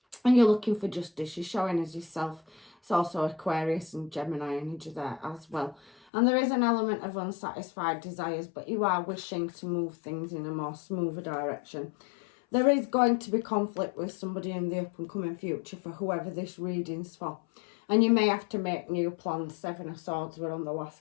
And you're looking for justice. You're showing as yourself. It's also Aquarius and Gemini energy there as well. And there is an element of unsatisfied desires, but you are wishing to move things in a more smoother direction. There is going to be conflict with somebody in the up and coming future for whoever this reading's for. And you may have to make new plans. Seven of Swords were on the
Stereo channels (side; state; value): right; drops out; at 6.0 s